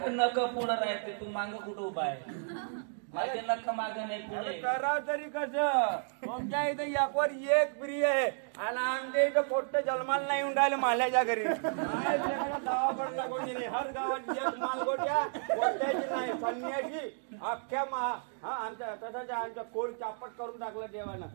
नख पुढं राहते तू माग कुठं उभा आहे माझे नख माग नाही पुढे करा तरी कसं तुमच्या इथे एकवर एक प्रिय आहे आणि आमच्या इथं पोट्ट जन्माला नाही येऊन राहिलं माल्याच्या घरी गावाकडला कोणी नाही हर गावात एक मालगोट्या पोट्ट्याची नाही संन्याशी अख्ख्या आमच्या तसंच आमच्या कोड चापट करून टाकलं देवानं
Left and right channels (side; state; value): left; silent; digital silence